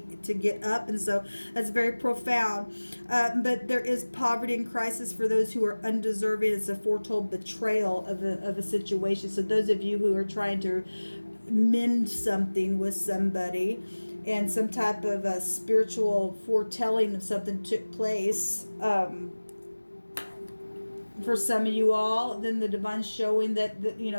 up, and so that's very profound. But there is poverty and crisis for those who are undeserving. It's a foretold betrayal of a situation. So those of you who are trying to mend something with somebody, and some type of a spiritual foretelling of something took place for some of you all, then the divine showing that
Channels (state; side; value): inverted; both; correlation -1.00